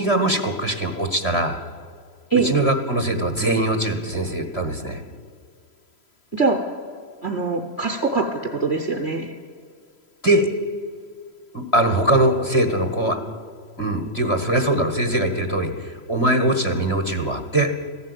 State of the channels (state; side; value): late; right; 3.0 ms